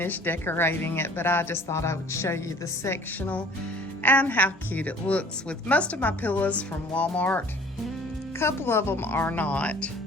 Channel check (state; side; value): normal; both; correlation 0.51